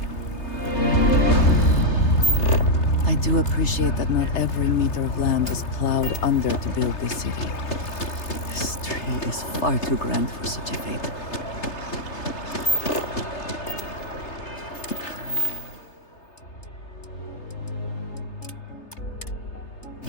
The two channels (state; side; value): late; right; 3.3 ms